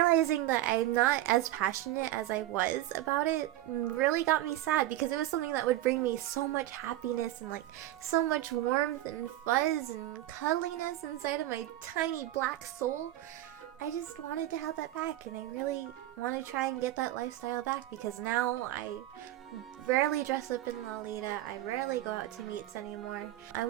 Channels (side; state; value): left; quieter; 14.8 dB